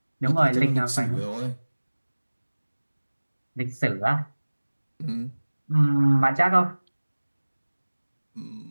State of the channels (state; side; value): inverted; both; correlation -1.00